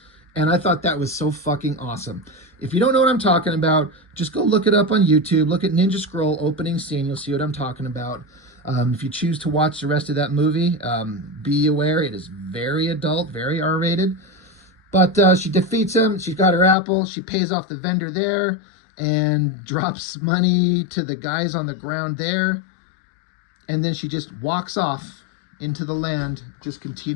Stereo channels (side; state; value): right; drops out; at 16.8 s